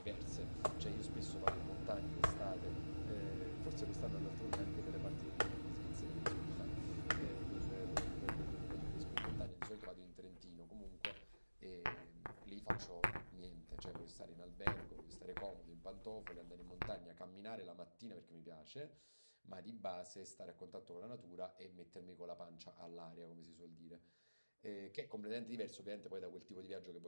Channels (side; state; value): both; inverted; correlation -1.00